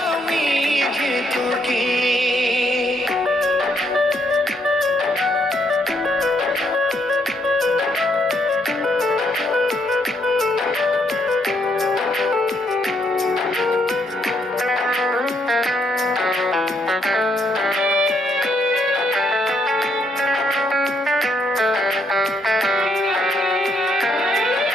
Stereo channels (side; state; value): both; normal; correlation 0.73